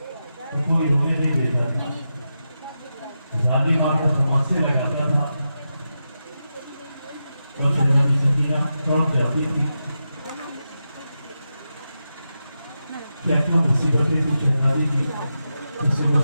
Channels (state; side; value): inverted; both; correlation -0.89